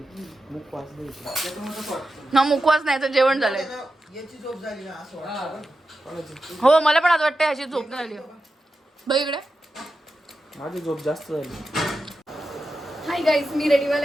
मुखवास दे. ना मुखवास नाही तर जेवण झालंय. याची झोप झाली ना असं वाटतं. हो मला पण आज वाटतं ह्याची झोप नाही झाली. बघ इकडे. माझी झोप जास्त झाली. हाय गाईज मी रेडी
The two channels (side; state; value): both; normal; correlation 0.91